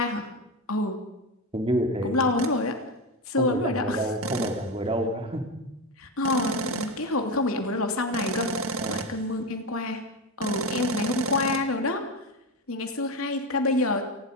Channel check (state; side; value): normal; both; correlation 0.16